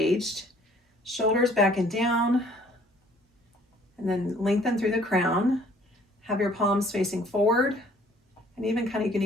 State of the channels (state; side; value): normal; both; correlation 0.58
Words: shoulders back and down, and then lengthen through the crown. Have your palms facing forward, and you can